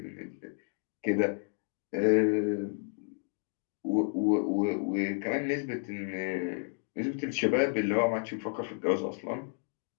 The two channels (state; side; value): silent; right; 55 dB below the other